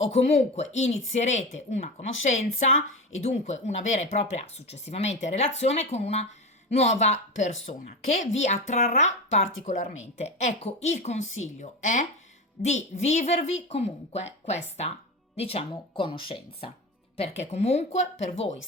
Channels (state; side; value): normal; both; correlation 0.23